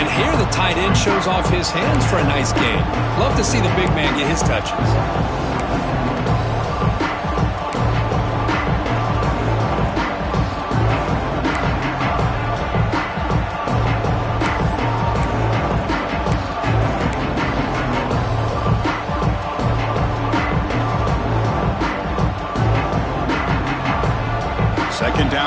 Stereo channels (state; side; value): identical; both; correlation 1.00